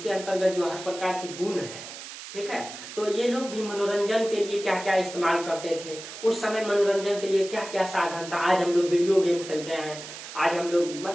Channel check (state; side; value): noise; right; hiss, 12 dB below the sound